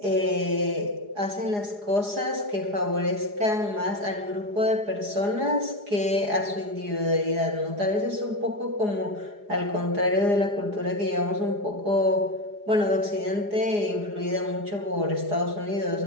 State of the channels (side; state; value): left; late; 4.9 ms